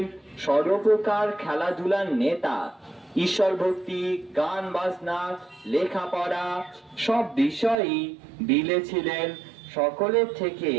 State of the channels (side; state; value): left; drops out; at 7.8 s